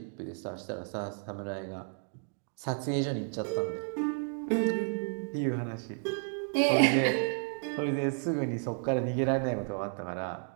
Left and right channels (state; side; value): silent; left; 56 dB below the other